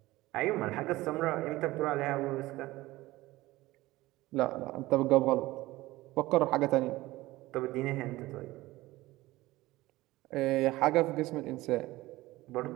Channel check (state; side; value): quieter; left; 18.4 dB